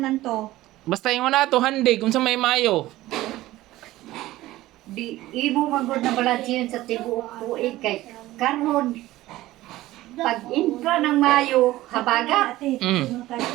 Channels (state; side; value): quieter; left; 16.6 dB